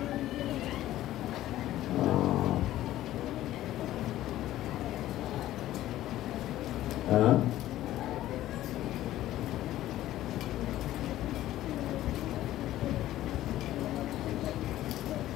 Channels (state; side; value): quieter; right; 14.2 dB